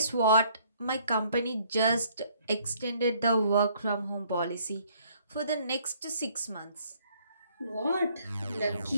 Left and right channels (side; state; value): both; inverted; correlation -0.64